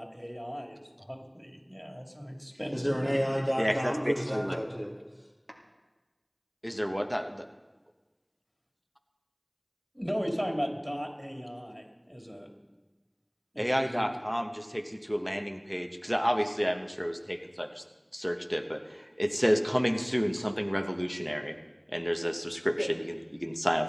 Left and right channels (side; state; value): both; identical; correlation 1.00